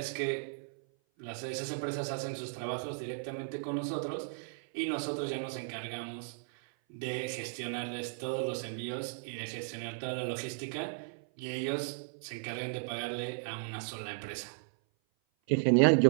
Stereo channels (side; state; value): left; silent; 54 dB below the other